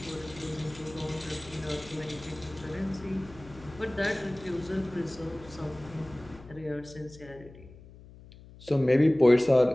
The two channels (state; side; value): noise; left; hum, 20 dB below the sound